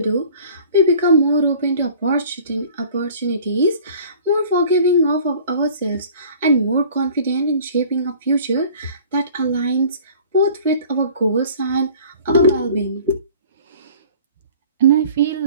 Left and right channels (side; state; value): both; inverted; correlation -0.48